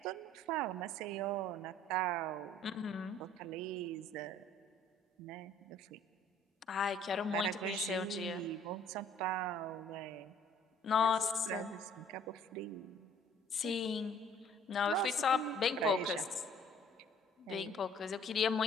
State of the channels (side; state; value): both; normal; correlation 0.56